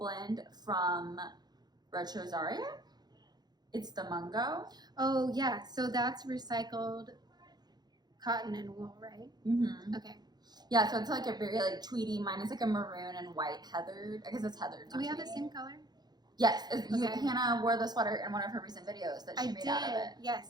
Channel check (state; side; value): late; left; 0.20 ms